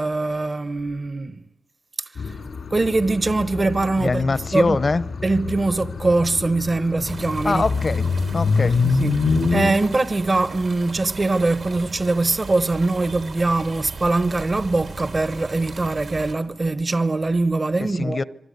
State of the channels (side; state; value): both; normal; correlation 0.93